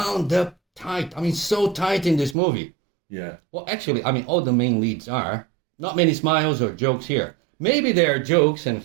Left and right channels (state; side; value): drops out; left; at 2.4 s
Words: up tight. I mean, so tight in this movie. Yeah. Well, actually, I mean, all the main leads are. Not many smiles or jokes here. Maybe there are jokes and